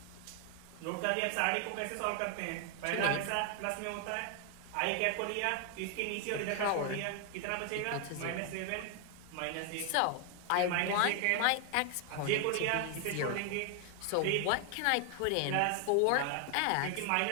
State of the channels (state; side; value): different; both; correlation 0.00